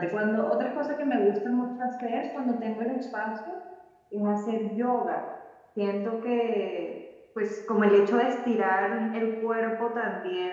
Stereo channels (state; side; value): identical; both; correlation 1.00